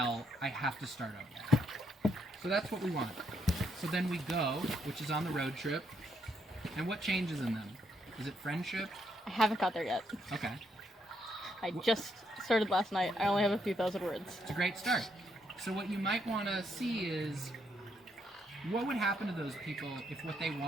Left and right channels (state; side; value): normal; both; correlation 0.76